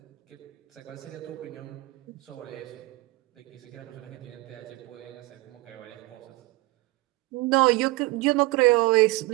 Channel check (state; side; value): quieter; left; 21.2 dB